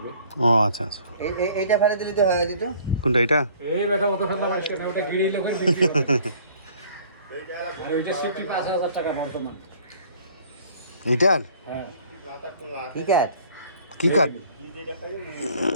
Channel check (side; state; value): both; inverted; correlation -0.54